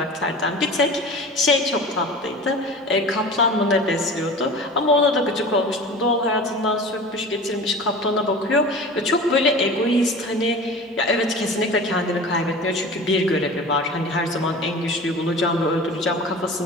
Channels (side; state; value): both; normal; correlation 0.37